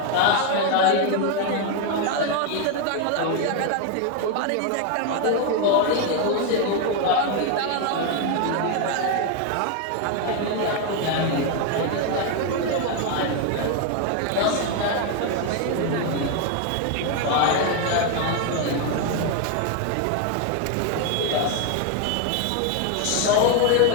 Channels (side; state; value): both; different; correlation 0.01